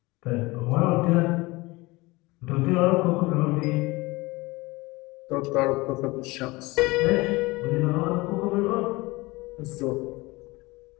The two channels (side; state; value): right; quieter; 22.4 dB